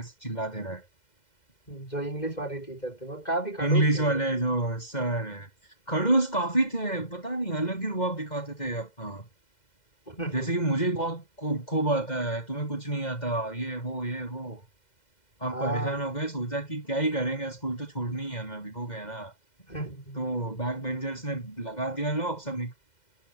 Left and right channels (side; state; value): right; late; 2.0 ms